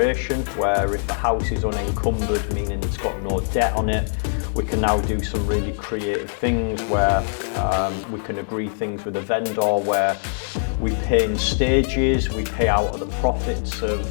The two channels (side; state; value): right; silent; 64 dB below the other